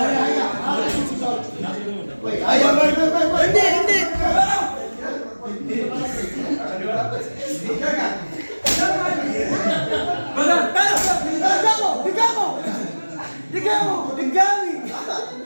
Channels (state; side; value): inverted; both; correlation -1.00